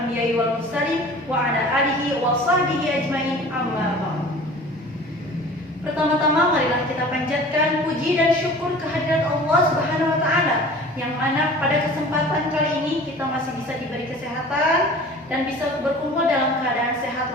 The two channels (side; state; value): both; normal; correlation 0.43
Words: wal mursalin wa ala alihi wa sahbihi ajmain, amma ba'd. Pertama-tama marilah kita panjatkan puji dan syukur kehadirat Allah Subhanahu wa taala, yang mana pada kesempatan kali ini kita masih bisa diberi kesehatan dan bisa berkumpul dalam keadaan sehat